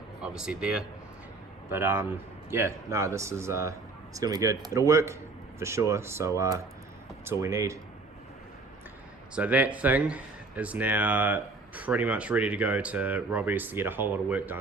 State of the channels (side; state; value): left; quieter; 3.5 dB